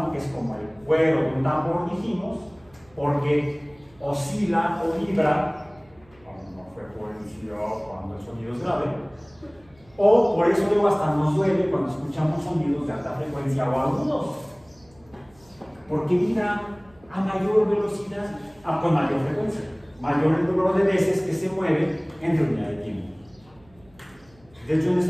que es como el cuero de un tambor, dijimos, porque oscila o vibra a una frecuencia cuando el sonido es grave, o por eso luego hasta nos duele cuando escuchamos sonidos de alta frecuencia o agudos, porque vibra a mayor velocidad, con mayor frecuencia, mayor el número de veces que se mueve entre unidad de tiempo. De hecho, en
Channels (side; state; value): right; noise; hum, 29 dB below the sound